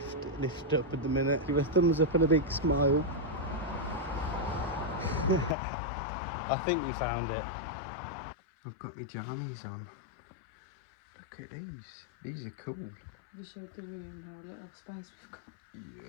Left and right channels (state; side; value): drops out; right; at 5.6 s